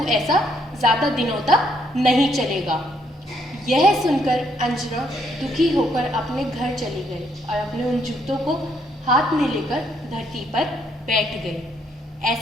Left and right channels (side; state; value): both; normal; correlation 0.72